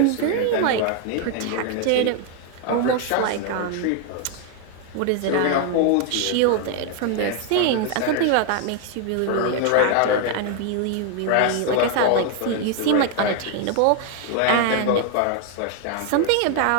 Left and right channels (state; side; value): different; both; correlation 0.00